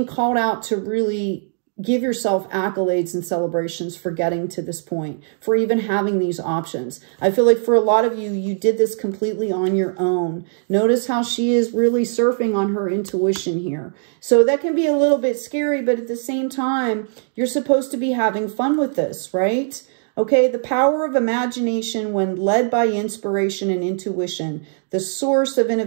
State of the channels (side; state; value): left; silent; 65 dB below the other